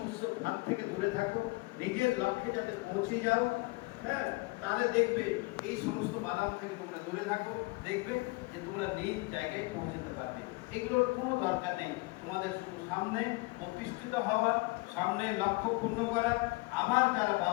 ভাগ থেকে দূরে থাকো, নিজের লক্ষ্যে যাতে পৌঁছে যাও। হ্যাঁ, তাহলে দেখবে এই সমস্ত বাদাম থেকে তোমরা দূরে থাকো, দেখবে যে তোমরা নিজ জায়গায় পৌঁছতে পারবে। এগুলোর কোনো দরকার নেই, তোমাদের শুধু সামনে প্রতিষ্ঠিত হওয়ার, সামনে লক্ষ্য পূর্ণ করার, আমার যারা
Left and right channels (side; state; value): right; quieter; 25.3 dB